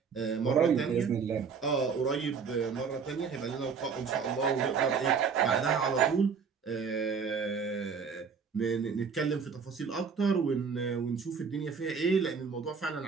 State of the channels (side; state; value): left; quieter; 5.9 dB